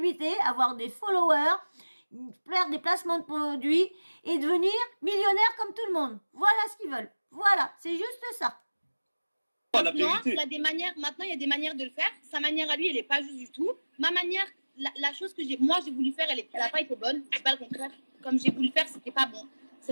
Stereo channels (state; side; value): inverted; both; correlation -1.00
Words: avoir des followers, faire des placements de produits et devenir millionnaires comme tout le monde. Voilà ce qu'ils veulent. Voilà, c'est juste ça. La vérité. Maintenant, il y a des manières de le faire. Sa manière à lui, elle n'est pas juste du tout. Ma manière, la chose que moi j'ai voulu faire, elle n'a pas été bonne. C'est pas le contraire. Comme j'ai voulu faire, c'était pas bon.